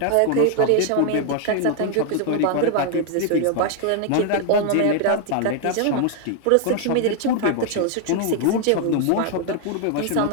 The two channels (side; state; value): both; different; correlation 0.00